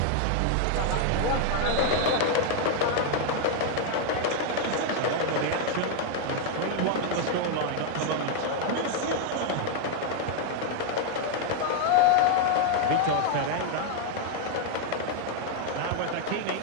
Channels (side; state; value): both; different; correlation 0.00